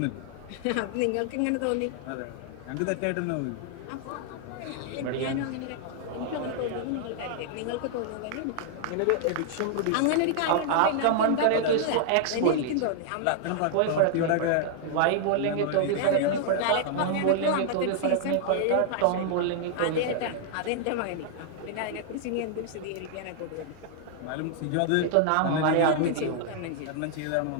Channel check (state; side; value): different; both; correlation 0.00